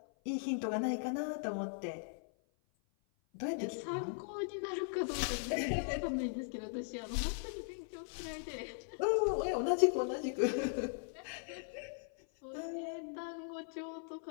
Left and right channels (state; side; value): silent; right; 52 dB below the other